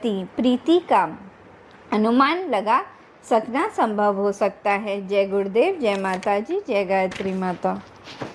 प्रीति का अनुमान लगा सकना संभव हो सकता है। जय गुरुदेव, जय माता जी, जय गायत्री माता।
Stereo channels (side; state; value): both; identical; correlation 1.00